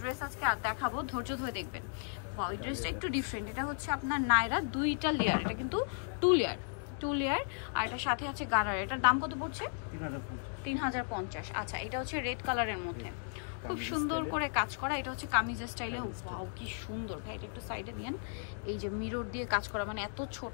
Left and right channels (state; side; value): silent; right; digital silence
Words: ড্রেস আজকে দেখাবো, ধৈর্য ধরে দেখবেন। ওয়াও, এই ড্রেসটা একটু ডিফারেন্ট। এটা হচ্ছে আপনার নায়রা, 2টা লেয়ার। এটা কিন্তু 2 লেয়ার। আর এটার সাথে আছে গারারা। এটার দাম কত পড়ছে? 3050। আচ্ছা, এটা হচ্ছে রেড কালারের মধ্যে, খুব সুন্দর করে কাজ করা। এটা হচ্ছে কামিজ স্টাইলে। ওয়াও, কি সুন্দর ভাই, এটা একটু সাইডে নিয়েন। এই যে মিরর দিয়ে কাজ করা, মানে এত